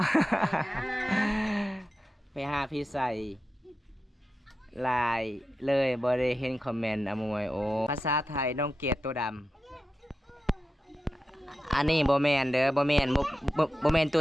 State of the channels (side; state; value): both; normal; correlation 0.91